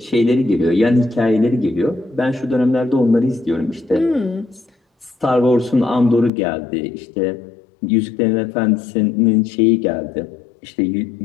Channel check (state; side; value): drops out; right; at 6.3 s